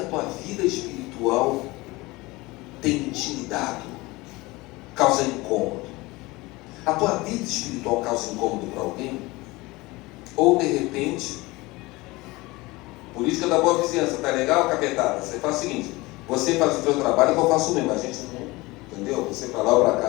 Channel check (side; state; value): right; quieter; 21.9 dB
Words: tua vida espiritual tem intimidado? Causa incômodo? A tua vida espiritual causa incômodo para alguém? Ou de repente, política da boa vizinhança, tá legal, capetada? Você faz o seguinte, você faz o seu trabalho que eu faço o mesmo, a gente não, entendeu? Você para lá ou para